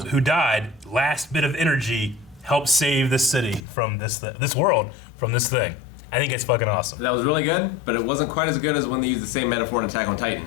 died, last bit of energy helped save this city from this world from this thing. I think it's fucking awesome. That was really good, but it wasn't quite as good as when they used the same metaphor in Attack on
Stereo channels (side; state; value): right; drops out; at 3.6 s